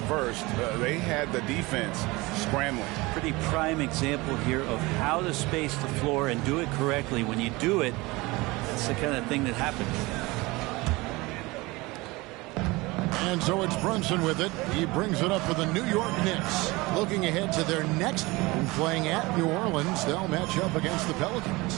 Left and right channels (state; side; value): quieter; left; 22.6 dB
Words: They had the defense scrambling. Pretty prime example here of how to space the floor and do it correctly. When you do it, it's the kind of thing that happens. And so it's Brunson with it. He brings it up for the New York Knicks. Looking ahead to their next game, playing at New Orleans, they'll match up against the